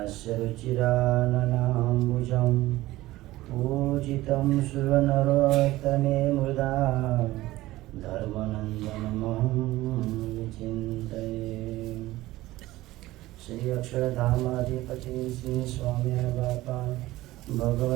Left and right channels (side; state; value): left; quieter; 17.3 dB